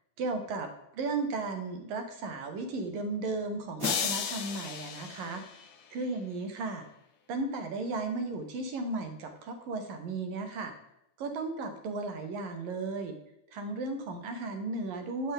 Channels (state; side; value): late; left; 11 ms